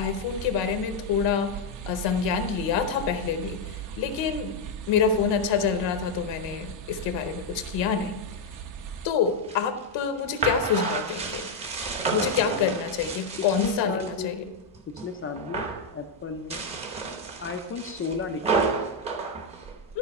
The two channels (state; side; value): quieter; right; 3.5 dB